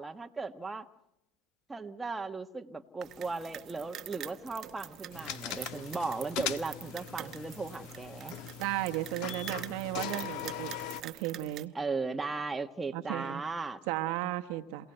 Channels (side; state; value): left; quieter; 4.3 dB